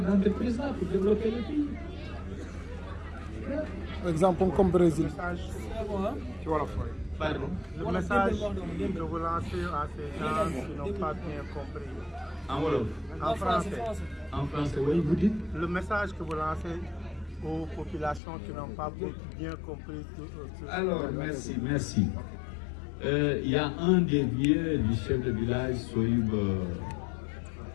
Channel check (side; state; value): right; drops out; at 18.2 s